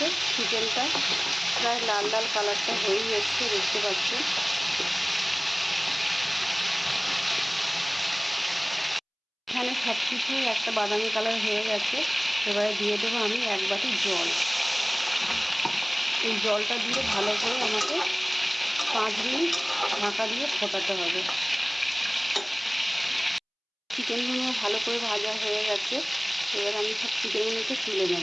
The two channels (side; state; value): both; identical; correlation 1.00